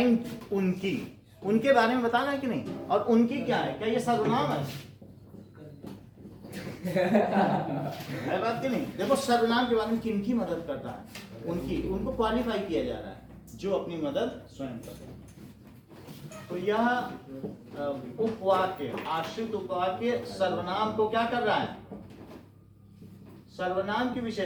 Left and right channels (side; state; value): both; identical; correlation 1.00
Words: उनके बारे में बताना है कि नहीं? और उनकी क्या है? क्या ये सर्वनाम है? है बात कि नहीं? देखो सर्वनाम के बारे में किनकी मदद करता है? उनको क्वालिफाई किया जा रहा है जो अपनी मदद स्वयं करते हैं। तो यह उपवाक्य, आश्रित उपवाक्य सर्वनाम को क्या कर रहा है? सर्वनाम की